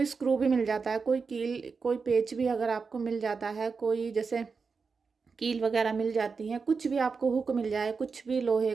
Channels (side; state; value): left; quieter; 5.0 dB